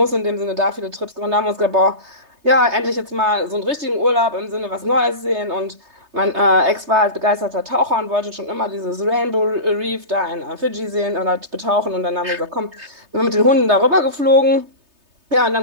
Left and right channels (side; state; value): left; late; 3.3 ms